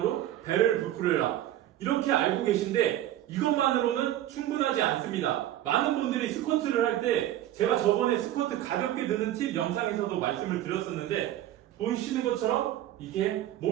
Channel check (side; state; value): left; quieter; 13.0 dB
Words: 배를 부풀려라, 이렇게 알고 계신데 이것만으로는 충분하지 않습니다. 많은 분들이 스쿼트를 할 때, 제가 저번에 스쿼트 가볍게 드는 팁 영상에서도 말씀을 드렸었는데, 보이시는 것처럼 이게